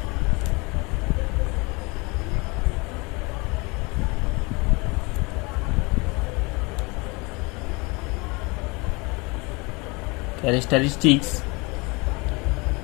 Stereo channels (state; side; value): quieter; right; 27.3 dB